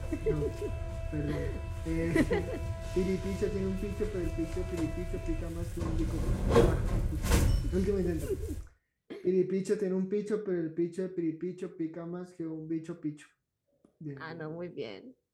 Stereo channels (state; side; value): identical; both; correlation 1.00